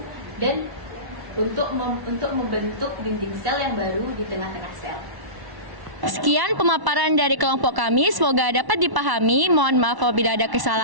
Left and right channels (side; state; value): left; late; 1.1 ms